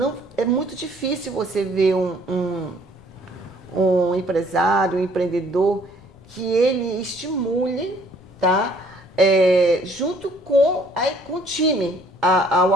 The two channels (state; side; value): noise; left; rumble, 26 dB below the sound